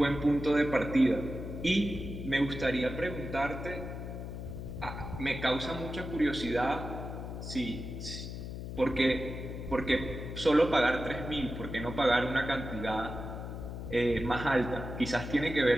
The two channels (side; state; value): left; noise; hum, 7 dB below the sound